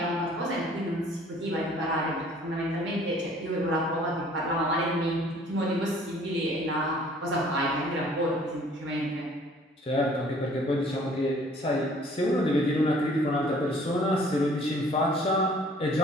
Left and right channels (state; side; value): normal; both; correlation 0.55